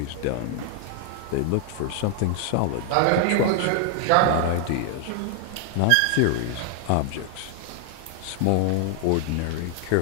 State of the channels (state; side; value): different; both; correlation 0.00